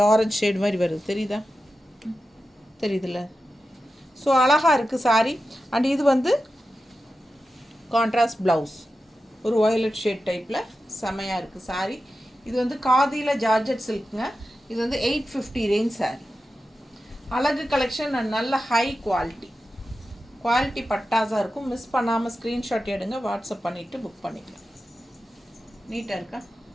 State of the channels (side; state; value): both; normal; correlation 0.91